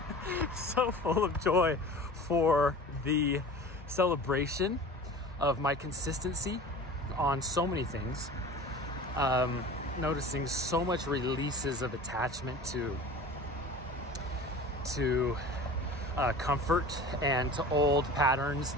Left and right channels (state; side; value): normal; both; correlation 0.39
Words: so full of joy for the celebration of my consistency on so many things. Noticing so much releases of attachment to comfort and to old patterns